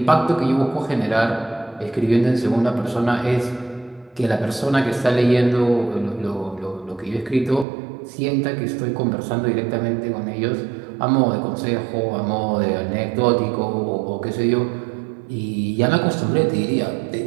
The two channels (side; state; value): left; drops out; at 7.7 s